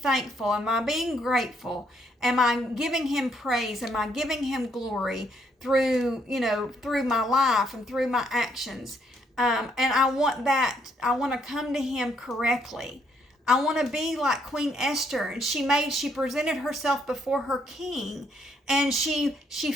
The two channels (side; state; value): both; normal; correlation 0.71